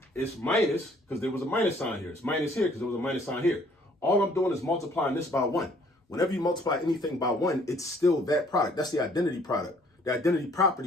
it's minus because there was a minus sign here. It's minus here because there was a minus sign here. All I'm doing is multiplying this by 1. Whenever you multiply anything by 1, it's still that product. That's the identity product, the identity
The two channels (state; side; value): normal; both; correlation 0.60